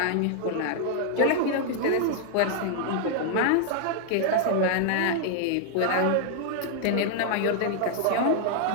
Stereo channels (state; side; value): different; both; correlation 0.00